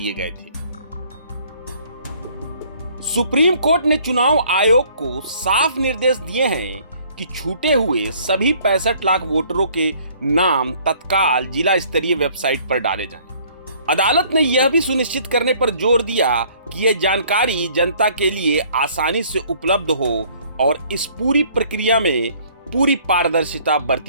गए थे। सुप्रीम कोर्ट ने चुनाव आयोग को साफ निर्देश दिए हैं कि छूटे हुए सभी 65 लाख वोटरों के नाम तत्काल जिला स्तरीय वेबसाइट पर डाले जाएं। अदालत ने यह भी सुनिश्चित करने पर जोर दिया कि यह जानकारी जनता के लिए आसानी से उपलब्ध हो और इस पूरी प्रक्रिया में पूरी पारदर्शिता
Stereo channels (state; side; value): inverted; both; correlation -0.58